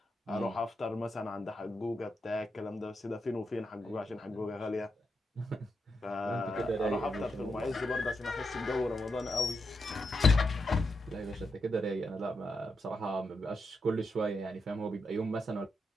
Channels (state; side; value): normal; both; correlation 0.85